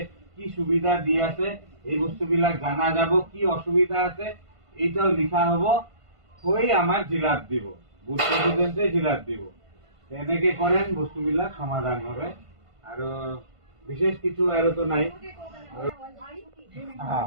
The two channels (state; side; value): late; left; 1.5 ms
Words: কি সুবিধা দি আছে এই বস্তুবিলাক জানা যাব। কি অসুবিধা আছে এইটাও লিখা হব, হৈ আমাৰ জিলাত দিব, বুথ প্ৰেচিডেণ্টে জিলাত দিব। তেনেকে কৰেন বস্তুবিলাক সমাধান হবে। আৰু বিশেষ কিছু আৰু তো নাই।